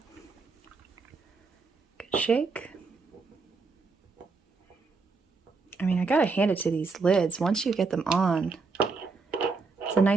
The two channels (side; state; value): left; quieter; 4.3 dB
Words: Good shake. I mean, I gotta hand it to these lids. Once you get them on, it's a